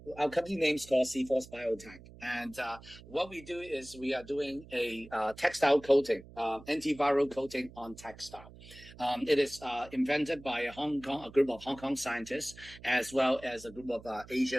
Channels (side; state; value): right; noise; hum, 19 dB below the sound